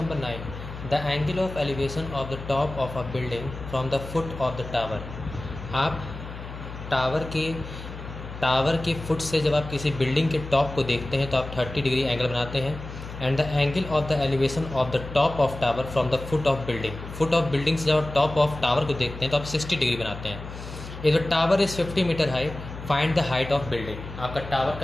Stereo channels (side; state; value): left; noise; hum, 11 dB below the sound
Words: 9, the angle of elevation of the top of a building from the foot of the tower. आप tower के foot से जब आप किसी building के टॉप को देखते हैं तो आप 30 डिग्री एंगल बनाते हैं। And the angle of the elevation of the top of tower from the foot of building से जब आप टॉप ऑफ टावर को देखते हैं तो आप 60 डिग्री बनाते हैं। If the tower is 50 metre high, find the height of building. आपका टावर